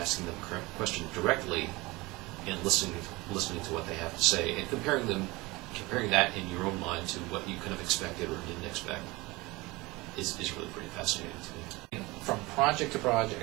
them questions directly and listening to what they have to say and comparing that in your own mind to what you kind of expected or didn't expect is really pretty fascinating to me. From project to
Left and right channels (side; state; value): left; quieter; 22.6 dB